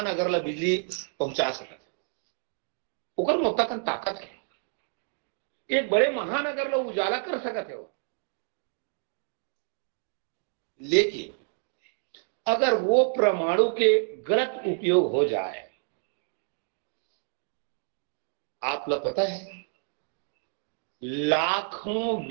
अगर ला बिजली पहुंचा सकते, ओकर मोता कन ताकत है। एक बड़े महान अगर ला उजाला कर सकते हो, लेकिन अगर वो परमाणु के गलत उपयोग हो जाए, आप लोग पता है लाखों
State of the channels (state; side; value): silent; left; 59 dB below the other